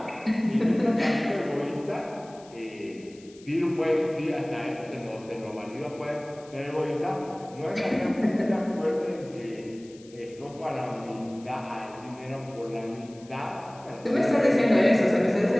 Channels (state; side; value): noise; left; hiss, 25 dB below the sound